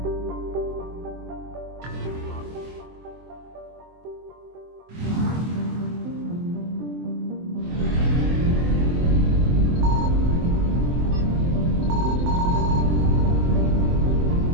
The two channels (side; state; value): left; late; 24 ms